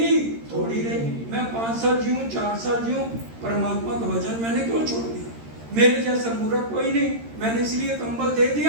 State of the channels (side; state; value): left; late; 13 ms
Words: थोड़ी रही। मैं 5 साल जीऊँ 4 साल जीऊँ, परमात्मा का भजन मैंने क्यों छोड़ दिया, मेरे जैसा मूर्ख कोई नहीं, मैंने इसलिए कंबल दे